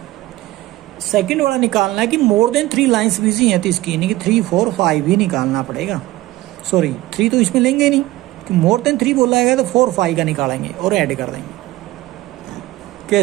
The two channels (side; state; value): left; quieter; 17.4 dB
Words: second वाला निकालना है कि मोर देन 3 लाइंस बिजी हैं, तो इसकी यानी कि 3, 4, 5 भी निकालना पड़ेगा। सॉरी 3 तो इसमें लेंगे नहीं, कि मोर देन 3 बोला गया तो 4, 5 का निकालेंगे और ऐड कर देंगे।